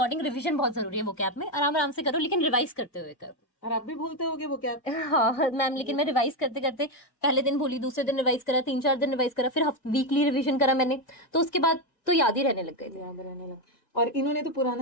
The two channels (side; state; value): right; late; 1.7 ms